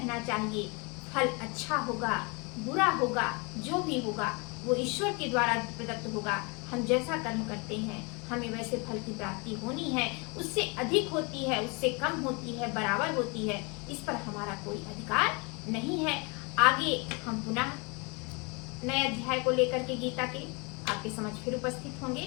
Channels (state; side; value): quieter; right; 30.4 dB